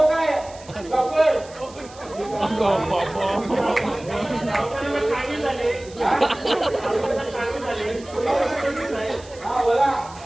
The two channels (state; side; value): noise; right; hiss, 21 dB below the sound